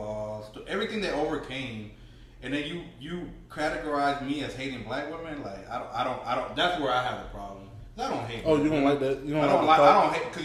to everything they overcame, and then you categorize me as hating black women, like I don't. That's where I have a problem. I don't hate. Oh, you don't like that? You don't I don't hate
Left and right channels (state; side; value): identical; both; correlation 1.00